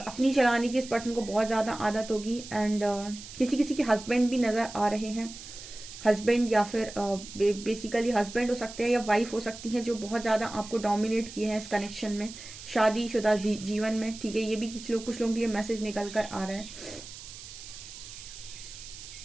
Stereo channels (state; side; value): noise; right; hiss, 14 dB below the sound